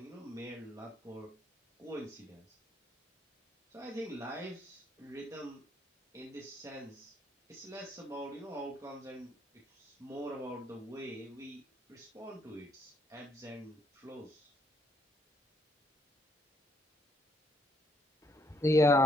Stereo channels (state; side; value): normal; both; correlation 0.71